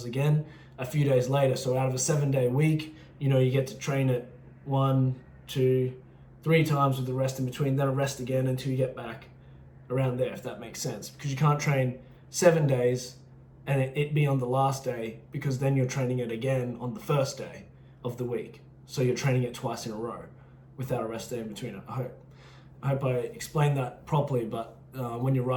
again a few days later. So out of a 7-day week, you know, you get to train it 1, 2, 3 times with the rest in between, then a rest again until you get back around there, if that makes sense. Because you can't train 7 days and it be on the last day, because then you're training it again on the first day of the week. So you're training it twice in a row without a rest day in between. I hope I explained that properly, but when you're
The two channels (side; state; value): both; identical; correlation 1.00